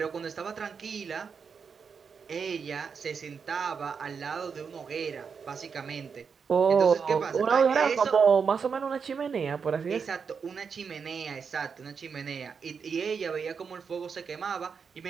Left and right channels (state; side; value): quieter; left; 6.0 dB